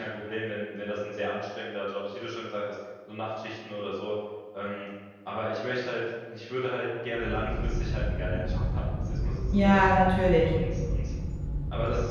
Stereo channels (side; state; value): both; identical; correlation 1.00